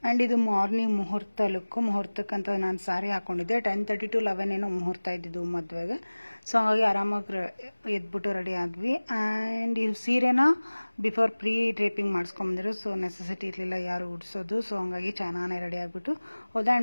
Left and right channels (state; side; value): inverted; both; correlation -1.00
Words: ಆ್ಯಂಡ್ ಇದು ಮಾರ್ನಿಂಗ್ ಮುಹೂರ್ತ ಲುಕ್ಕು. ಮುಹೂರ್ತಕ್ಕಂತ ನಾನು ಸಾರಿ ಹಾಕೊಂಡಿದ್ದೆ 10:30 to 11 ಏನೋ ಮುಹೂರ್ತ ಇದ್ದಿದ್ದು ಮದುವೆಗೆ. ಸೊ ಹಾಗಾಗಿ ಆರಾಮಾಗಿ ಎದ್ಬಿಟ್ಟು ರೆಡಿ ಆದ್ವಿ. ಆ್ಯಂಡ್ ಈ ಸೀರೆನ ಬಿಫೋರ್ ಪ್ರೀ ಡ್ರೇಪಿಂಗ್ ಮಾಡಿಸ್ಕೊಂಬಂದಿರೋ, ಸೊ ನೆಸೆಸಿಟಿ ಇರಲಿಲ್ಲ ಯಾರು ಉಡ್ಸೋದು. ಸೊ ಹಂಗಾಗಿ ಚೆನ್ನಾಗಿ ರೆಡಿ ಆಗಿಬಿಟ್ಟು ಹೋದೆ.